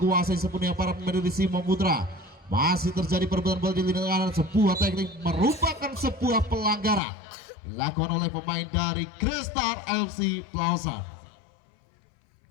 sepenuhnya para pemain dari Simo Putra. Masih terjadi perebutan bola di lini kanan, sebuah teknik merupakan sebuah pelanggaran dilakukan oleh pemain dari Grestar FC Plaza.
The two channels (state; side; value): drops out; right; at 7.0 s